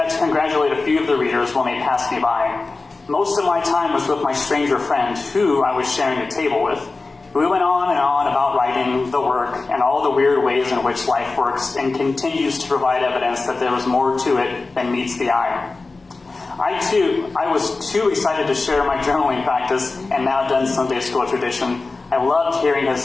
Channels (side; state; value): right; quieter; 3.7 dB